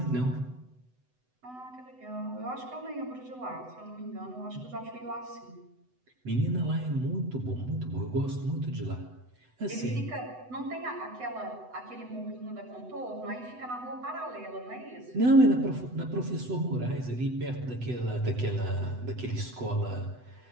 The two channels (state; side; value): late; left; 8.0 ms